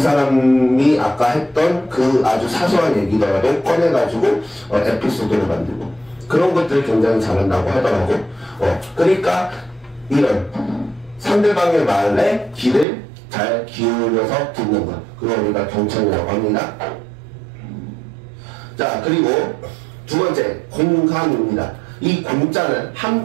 아까 했던 그 아주 사소한 얘기더라도 꺼내가지고 에피소드를 만들고, 그런 것들을 굉장히 잘한다고 하더라고. 그러니까 이런 상대방의 말에 귀를 잘 기울여서 듣는 것, 그걸 우리가 경청이라고 합니다. 자, 그리고 두 번째, 공감입니다. 이 공자는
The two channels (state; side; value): drops out; left; at 12.9 s